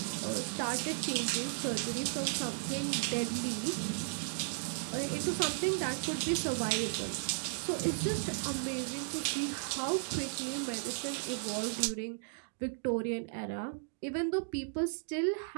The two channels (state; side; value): silent; left; digital silence